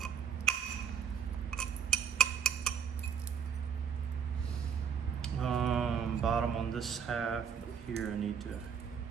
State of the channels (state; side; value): quieter; left; 7.2 dB